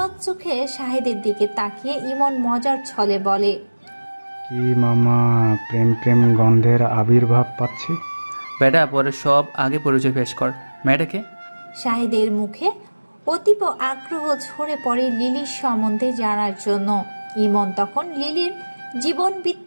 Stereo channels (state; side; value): inverted; both; correlation -1.00